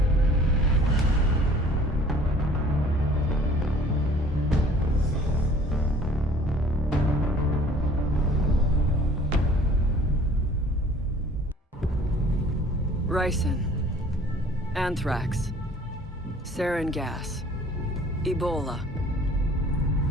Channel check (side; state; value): both; normal; correlation 0.52